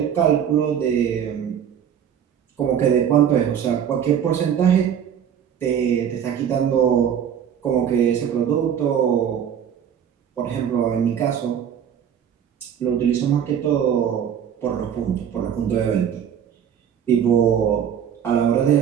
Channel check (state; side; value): quieter; left; 8.7 dB